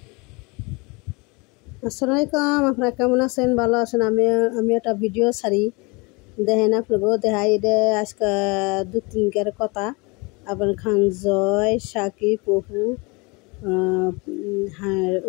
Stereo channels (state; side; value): quieter; right; 27.8 dB